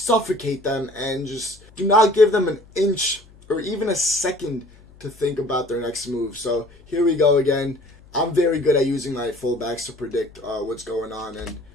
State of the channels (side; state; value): left; noise; hum, 25 dB below the sound